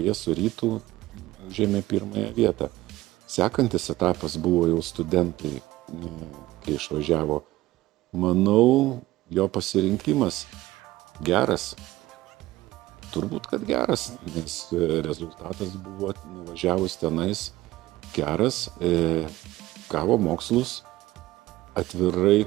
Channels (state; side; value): quieter; left; 17.2 dB